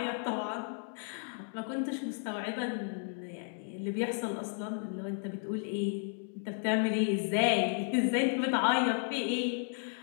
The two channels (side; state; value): right; silent; 55 dB below the other